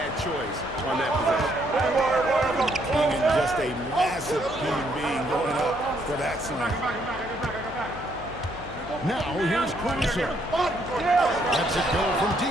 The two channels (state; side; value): noise; left; hum, 15 dB below the sound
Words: choice on that possession. Clingan, just a massive human being going up for that slam. Now here's Caruso. Lets it go from